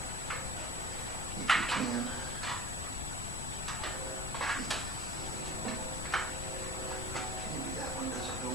If you can. Maybe that one doesn't go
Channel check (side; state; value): left; noise; rumble, 5 dB below the sound